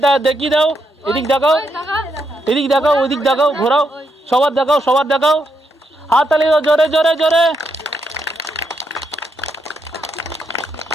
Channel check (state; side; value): normal; both; correlation 0.80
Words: দেখিয়ে দাও, এদিক দেখাও, এদিক দেখাও, ওইদিক দেখাও, ঘোরাও, সবার দেখাও, সবার দেখাও। হাততালি দাও জোরে জোরে জোরে।